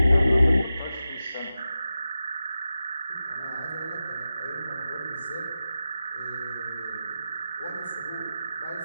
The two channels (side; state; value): both; inverted; correlation -0.92